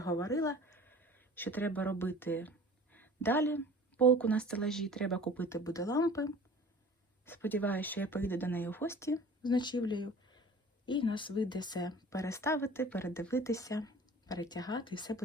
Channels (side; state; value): both; normal; correlation 0.44